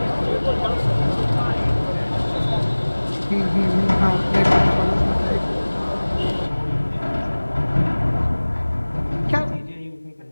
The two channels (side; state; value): both; inverted; correlation -1.00